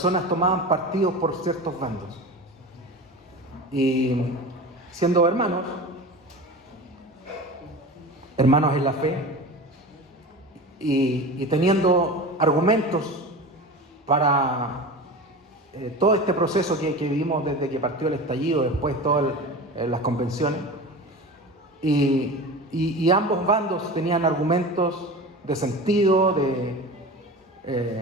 tomaban partidos por ciertos bandos. Y siendo hermanos en la fe, y teniendo argumentos para todo este proceso que vivimos desde que partió el estallido, después todas las convenciones, y ambos bandos tenían argumentos de sentido,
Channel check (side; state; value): both; normal; correlation 0.31